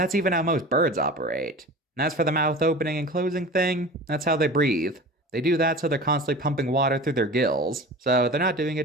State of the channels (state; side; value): normal; both; correlation 0.36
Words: even how most birds operate. And as for the mouth opening and closing thing, that's how they breathe. They do that so they're constantly pumping water through their gills. So they're not doing it